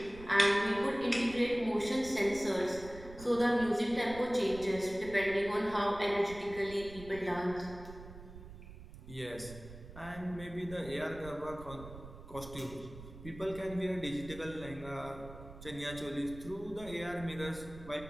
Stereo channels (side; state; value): right; noise; rumble, 15 dB below the sound